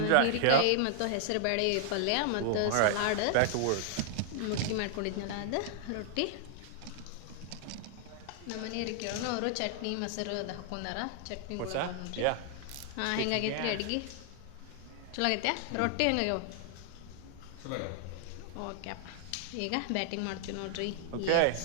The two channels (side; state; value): both; different; correlation -0.01